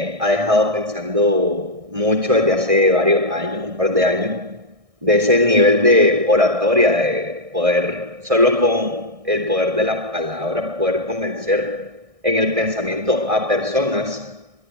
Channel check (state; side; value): late; left; 1.6 ms